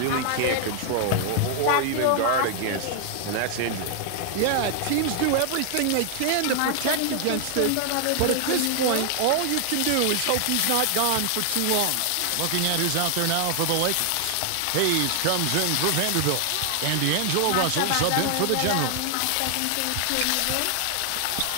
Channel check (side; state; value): both; different; correlation 0.00